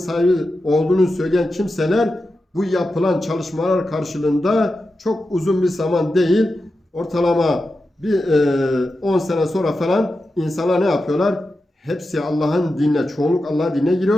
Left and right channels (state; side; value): normal; both; correlation 0.90